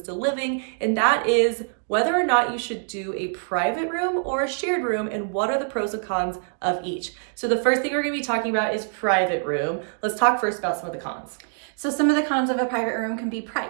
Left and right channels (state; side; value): silent; left; digital silence